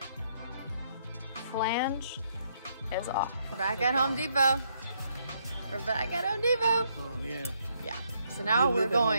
Flange is off. We're back at Home Depot. We're back at Home Depot. Oh, yeah. Yeah. So now we live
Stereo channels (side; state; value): both; inverted; correlation -0.73